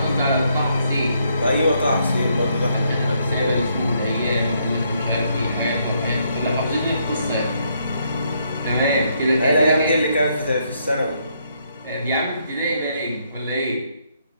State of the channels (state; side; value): inverted; both; correlation -0.74